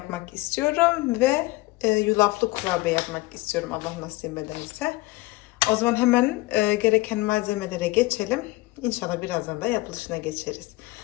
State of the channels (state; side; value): quieter; right; 20.9 dB